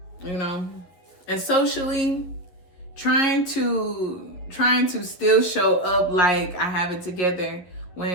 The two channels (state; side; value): late; right; 11 ms